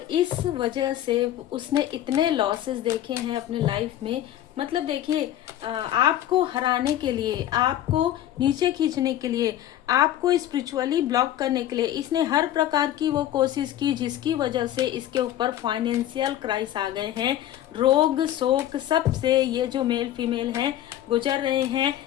इस वजह से उसने इतने लॉसेस देखे हैं अपने लाइफ में। मतलब देखिए, आपको हराने के लिए, आपको नीचे खींचने के लिए, आपको स्पिरिचुअली ब्लॉक करने के लिए इसने हर प्रकार की वो कोशिश की, जिसकी वजह से इसके ऊपर फाइनेंशियल क्राइस आ गए हैं। रोग शोक सब से ये जो मेल फीमेल हैं गुजर रहे हैं।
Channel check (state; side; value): quieter; right; 12.4 dB